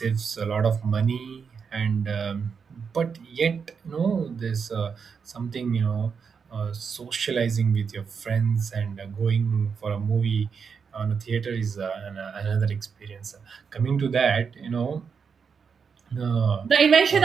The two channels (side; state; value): left; quieter; 6.1 dB